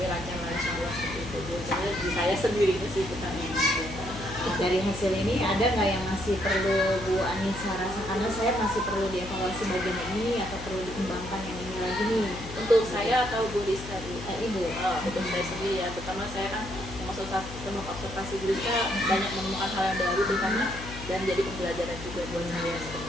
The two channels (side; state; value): left; noise; hum, 12 dB below the sound